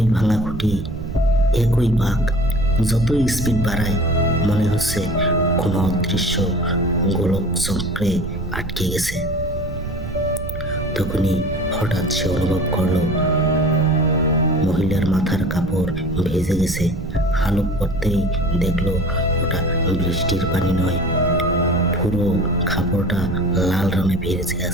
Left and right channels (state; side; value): noise; right; rumble, 8 dB below the sound